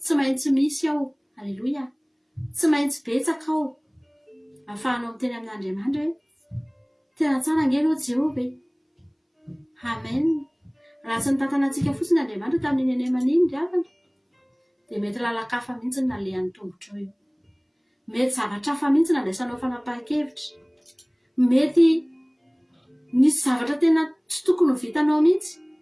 maintsy misy ao. Alleluia. Tsy maintsy betsaka ao. Ahafahanao miteny amin'Andriamanitra hoe tena tsara ange ianao Jehovah. Amen. Raha tsy nitantana antsika fotsiny Andriamanitra tamin'ny nenemaniny ry havana dia mety lalakafa mihitsy ny nalehan'ny tongotra eo. Mety zavatra hafa mihitsy nandraisanao fanapahan-kevitra. Mety nisy zavatra tena tsy tokony ho vitanao mihitsy.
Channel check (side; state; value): both; identical; correlation 1.00